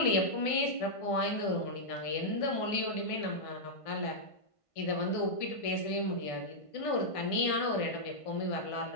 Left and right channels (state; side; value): late; right; 1.5 ms